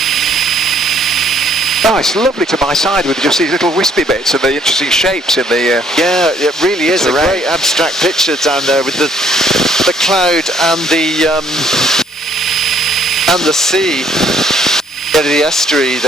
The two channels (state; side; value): normal; both; correlation 0.64